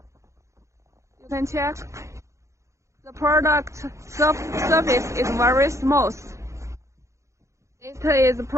You can check. The product surface is very smooth. It is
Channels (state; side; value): late; left; 0.14 ms